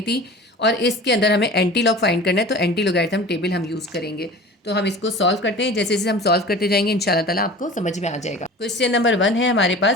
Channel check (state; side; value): normal; both; correlation 0.39